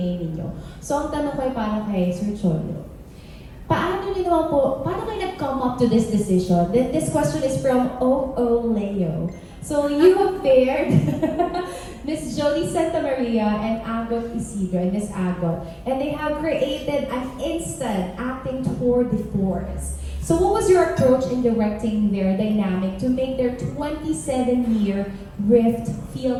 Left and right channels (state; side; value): identical; both; correlation 1.00